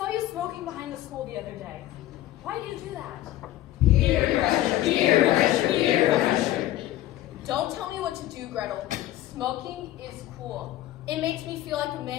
you smoking behind the school the other day. Why do you do that? Peer pressure, peer pressure, peer pressure. Don't tell me what to do, Gretel. Smoking is cool. It makes me feel like a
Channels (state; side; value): quieter; right; 14.5 dB